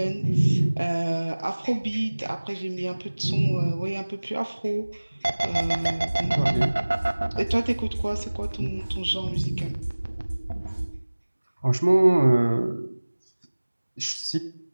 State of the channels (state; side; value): inverted; both; correlation -1.00